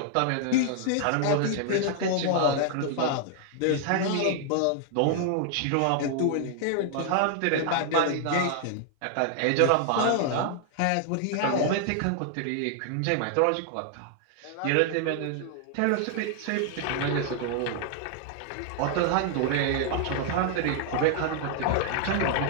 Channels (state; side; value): different; both; correlation 0.00